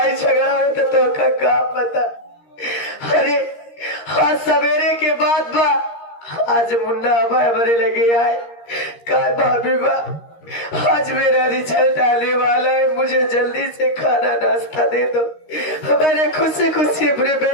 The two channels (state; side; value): late; right; 13 ms